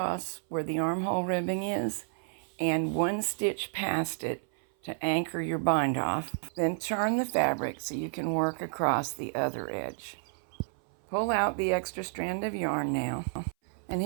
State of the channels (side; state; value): left; silent; 57 dB below the other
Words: where the armhole ribbing is and one stitch past it to anchor your bind off. Then turn the fabric so you can work across the other edge. Pull out the extra strand of yarn now. And